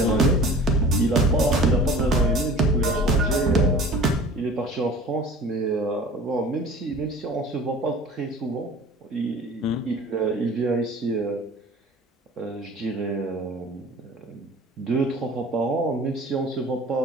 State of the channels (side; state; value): both; normal; correlation 0.43